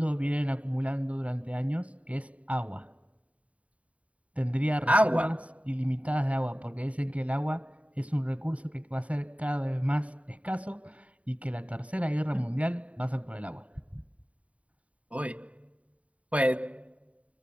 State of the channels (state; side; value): late; left; 0.066 ms